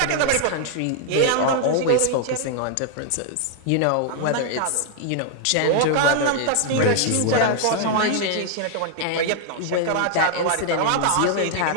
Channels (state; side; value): different; both; correlation 0.00